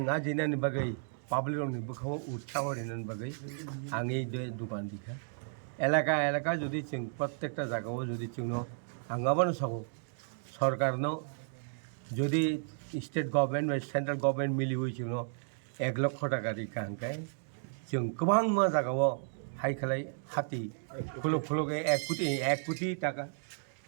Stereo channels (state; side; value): silent; left; digital silence